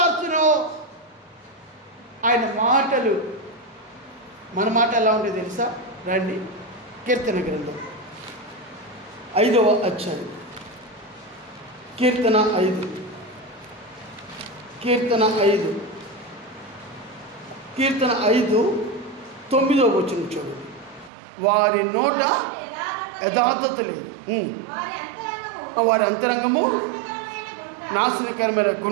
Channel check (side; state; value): left; drops out; at 21.1 s